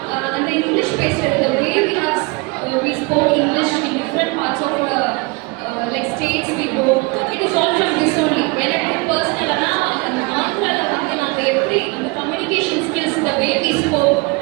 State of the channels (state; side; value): quieter; left; 26.6 dB